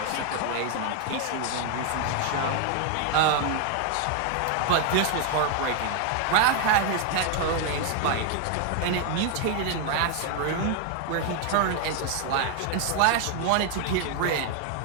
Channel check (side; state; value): both; different; correlation 0.00